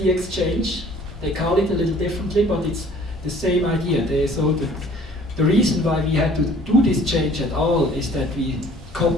exchange. They call it a little differently, but it's the same idea. The reason why we had to do this change at all is that we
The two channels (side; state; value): both; normal; correlation 0.53